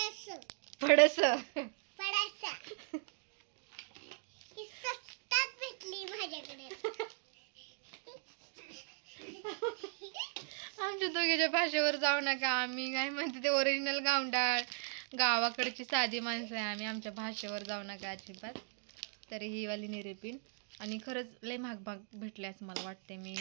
ही स्वस्तात भेटली माझ्याकडे आमच्या दोघीच्या भाषेवर जाऊ नका आम्ही काय म्हणते ते ओरिजिनल गावंडाळ गावाकडची साधी माणसं आहे आम्ही आमच्या भाषेवर जाऊ नका अजिबात. तर ही वाली निरेपिन आणि खरंच लय महाग भेटले असं मला वाटते. मी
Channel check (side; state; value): left; silent; 52 dB below the other